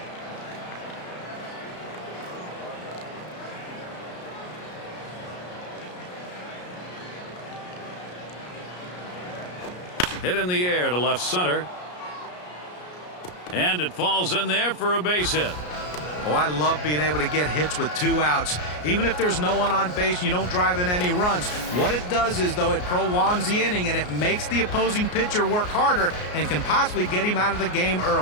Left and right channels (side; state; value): right; late; 33 ms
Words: Hit in the air to left center. And it falls in there for a base hit. Oh, I love being able to get hits with 2 outs. Even if there's no one on base and you don't drive in any runs. What it does is, though, it prolongs the inning and it makes the opposing pitcher work harder and can possibly get him out of the game